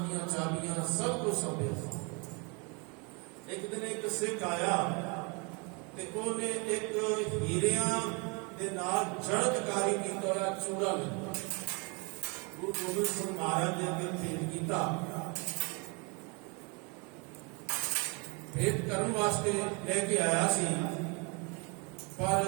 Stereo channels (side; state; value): left; quieter; 31.9 dB